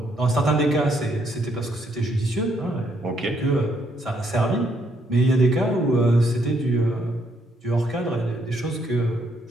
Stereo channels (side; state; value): both; normal; correlation 0.72